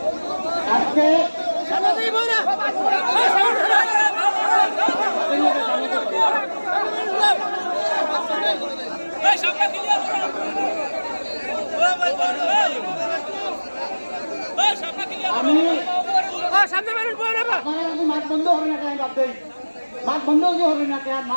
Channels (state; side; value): inverted; both; correlation -1.00